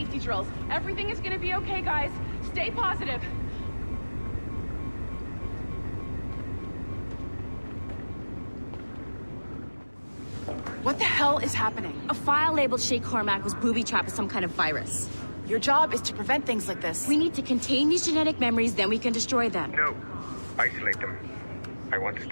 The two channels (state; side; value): inverted; both; correlation -1.00